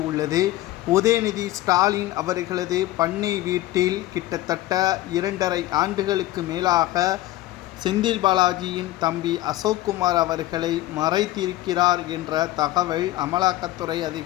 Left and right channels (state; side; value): quieter; right; 15.9 dB